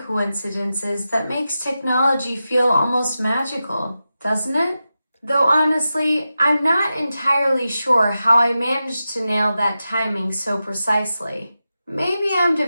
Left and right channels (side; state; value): both; inverted; correlation -0.92